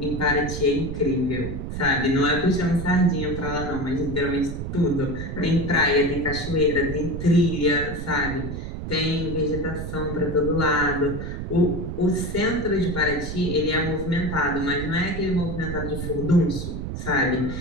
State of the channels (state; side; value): noise; right; rumble, 6 dB below the sound